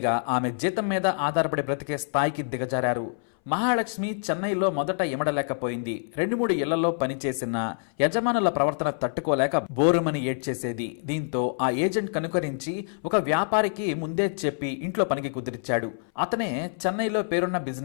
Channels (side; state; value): right; silent; 61 dB below the other